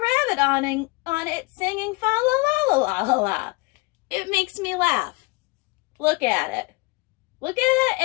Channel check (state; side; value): quieter; right; 24.6 dB